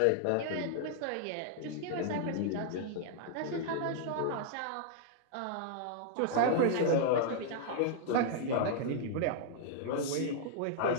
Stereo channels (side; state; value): both; different; correlation -0.01